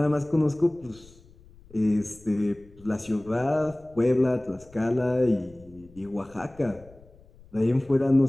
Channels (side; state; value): left; noise; rumble, 25 dB below the sound